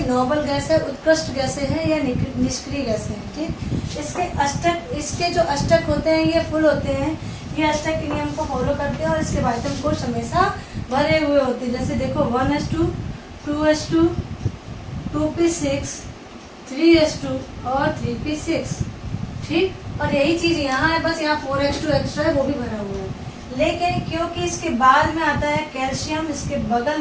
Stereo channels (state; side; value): identical; both; correlation 1.00